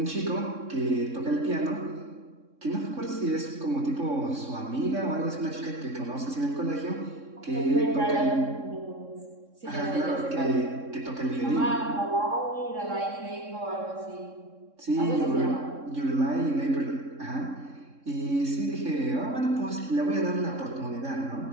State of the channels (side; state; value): left; late; 3.6 ms